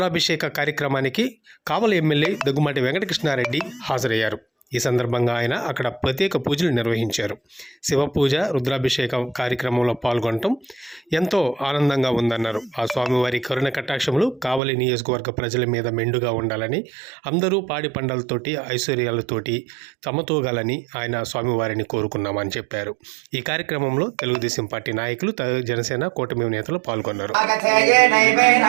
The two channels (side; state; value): left; drops out; at 14.6 s